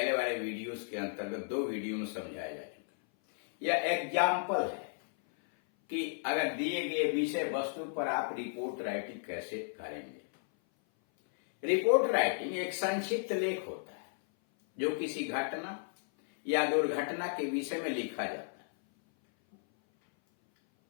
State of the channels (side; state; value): right; silent; 55 dB below the other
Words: वाले वीडियोस के अंतर्गत 2 वीडियो में समझाया जा चुका है। यह एग्जाम्पल है कि अगर दिए गए विषय वस्तु पर आप रिपोर्ट राइटिंग कैसे करेंगे। रिपोर्ट राइटिंग एक संक्षिप्त लेख होता है जो किसी घटना या दुर्घटना के विषय में लिखा जाता है,